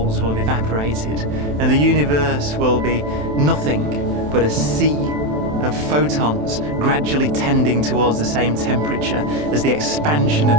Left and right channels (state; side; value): late; left; 27 ms